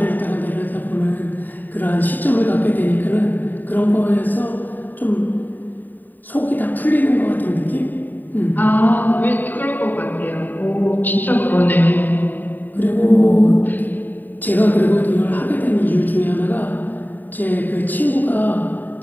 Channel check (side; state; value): right; late; 0.088 ms